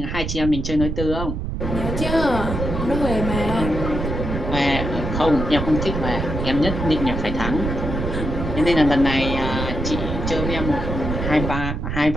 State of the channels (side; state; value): right; noise; rumble, 3 dB below the sound